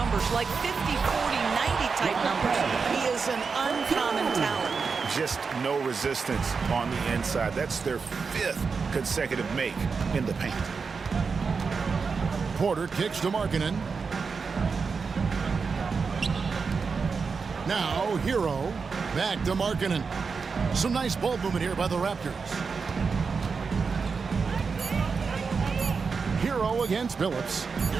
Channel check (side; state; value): left; quieter; 5.1 dB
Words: like 50, 40, 90 type numbers. He is an uncommon talent. Just no resistance on the inside. That's their 5th consecutive make in the paint. Porter kicks to Markkanen. Now Hero back to Markkanen. Some nice ball movement here by the Raptors. Hero against Billups.